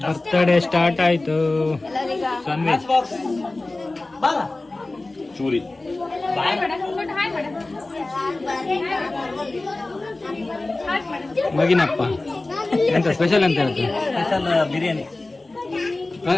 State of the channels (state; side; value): quieter; right; 3.0 dB